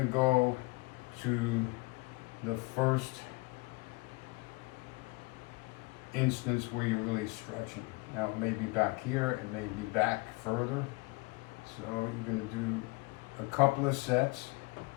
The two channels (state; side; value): quieter; right; 25.1 dB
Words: go to the first instance where you're really stretching. Now it may be back here, it may be back further. So you're going to do a couple of sets